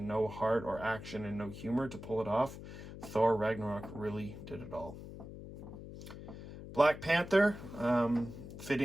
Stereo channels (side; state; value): left; noise; hum, 12 dB below the sound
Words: no heart, or action and no humor to pull it off. Thor Ragnarok really did it all. Black Panther,